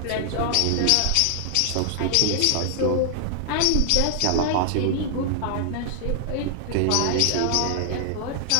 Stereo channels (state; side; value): different; both; correlation 0.00